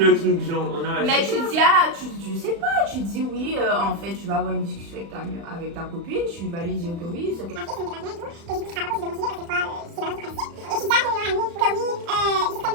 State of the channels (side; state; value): left; late; 35 ms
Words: truc, genre, on a. Mais tu dis, ah, tu sais pas, tu dis oui, en fait, tu vas avoir une discussion avec ta copine, tu vas lui dire que oui, c'est que.